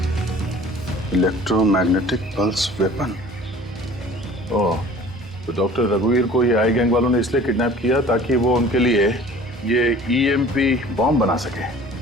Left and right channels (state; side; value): normal; both; correlation 0.47